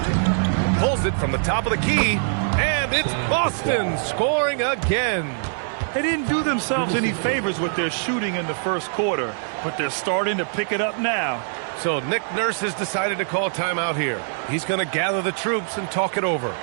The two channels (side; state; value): left; silent; digital silence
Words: Pulls it from the top of the key. And it's Boston scoring again. They didn't do themselves any favors with their shooting in the first quarter, but they're starting to pick it up now. So Nick Nurse has decided to call timeout here. He's going to gather the troops and talk it over.